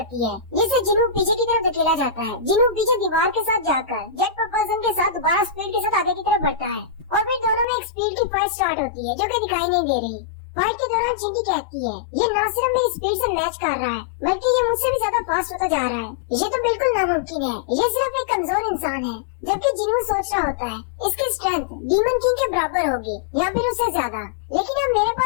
है, जिससे जिन्हों पीछे की तरफ धकेला जाता है। जिन्हों पीछे दीवार के साथ जाकर जेट प्रोपल्शन के साथ दोबारा स्पीड के साथ आगे की तरफ बढ़ता है और फिर दोनों में एक स्पीड की फाइट स्टार्ट होती है जो कि दिखाई नहीं दे रही। फाइट के दौरान चींटी कहती है ये न सिर्फ मेरी स्पीड से मैच कर रहा है बल्कि ये मुझसे भी ज्यादा फास्ट होता जा रहा है। ये तो बिल्कुल नामुमकिन है, ये सिर्फ एक कमजोर इंसान है। जबकि जिन्हों सोच रहा होता है इसकी स्ट्रेंथ डीमन किंग के बराबर होगी या फिर उससे ज्यादा, लेकिन अब मेरे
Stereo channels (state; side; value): drops out; right; at 7.7 s